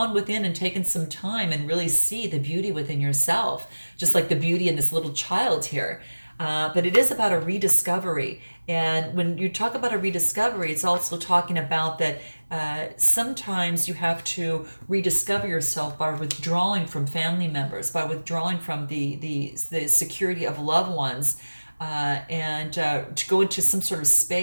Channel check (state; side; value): inverted; both; correlation -1.00